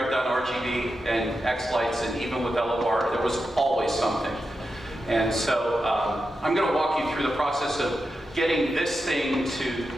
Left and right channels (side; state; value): both; normal; correlation 0.89